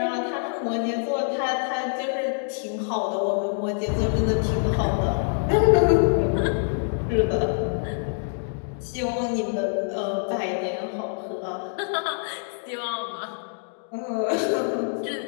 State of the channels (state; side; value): silent; right; digital silence